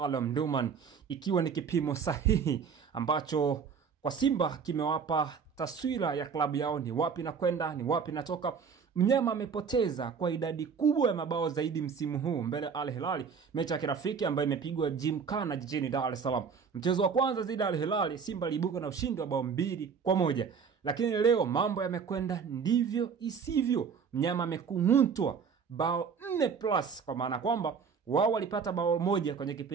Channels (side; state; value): left; quieter; 6.2 dB